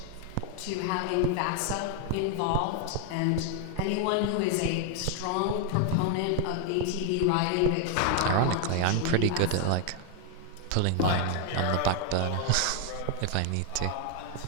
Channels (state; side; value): different; both; correlation 0.00